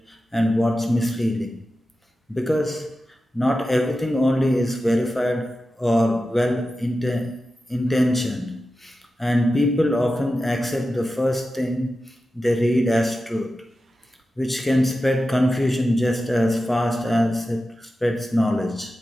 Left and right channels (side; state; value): both; normal; correlation 0.92